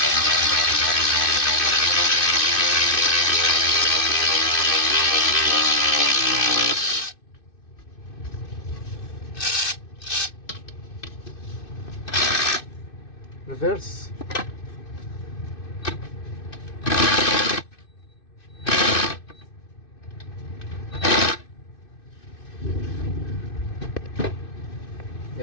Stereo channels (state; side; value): late; right; 2.6 ms